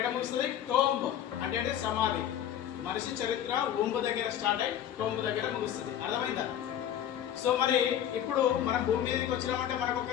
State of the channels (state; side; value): quieter; right; 10.5 dB